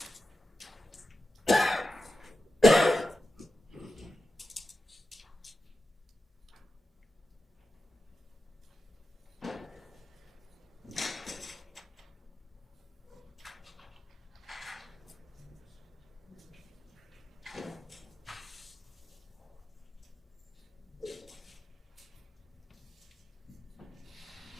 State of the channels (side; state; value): both; normal; correlation 0.91